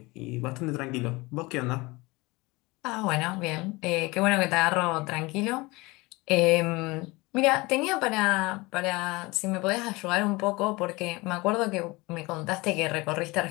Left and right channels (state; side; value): quieter; right; 23.3 dB